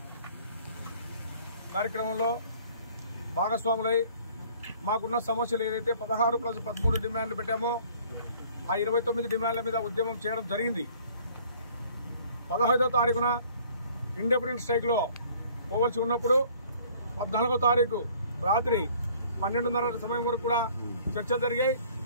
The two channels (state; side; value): inverted; both; correlation -0.55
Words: కార్యక్రమంలో భాగస్వాములై మాకున్న సమస్యలు ఏదైతే 16+13 డిమాండ్లు పెట్టామో ఆ 29 డిమాండ్ల మీద ఉద్యమం చేయడం జరిగింది. 15వ తారీఖున ఇండిపెండెంట్ స్ట్రైక్లో పోవలసి ఉన్నప్పుడు 14వ తారీఖు రాత్రి 12:30 సమయం వరకు కూడా చర్చలు జరిగాయి.